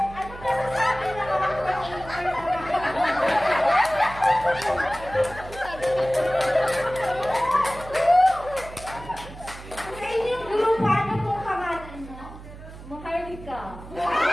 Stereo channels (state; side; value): noise; right; hum, 15 dB below the sound